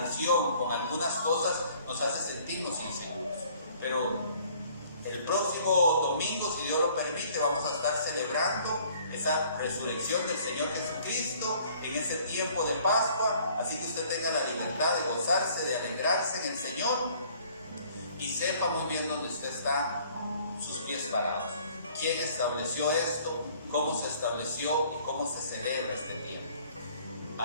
con algunas cosas nos hace sentirnos inseguros. Pero el próximo domingo, si Dios lo permite, vamos a estar celebrando esa resurrección del Señor Jesucristo en ese tiempo de Pascua. Así que usted tenga la libertad de gozarse, de alegrarse en el Señor y sepa muy bien dónde usted está, sus pies parados. ¿Quién estableció esto? ¿Cómo se estableció? ¿Y cómo se celebra este tiempo?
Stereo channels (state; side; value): inverted; both; correlation -0.57